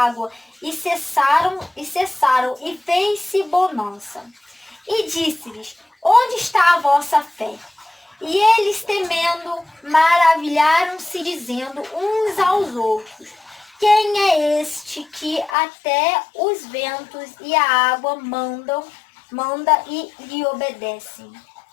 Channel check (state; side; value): drops out; right; at 15.6 s